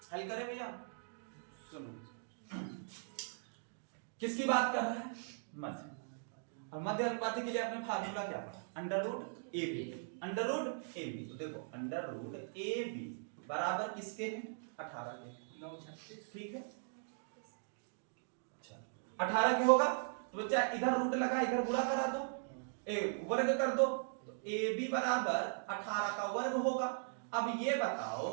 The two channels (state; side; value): silent; left; digital silence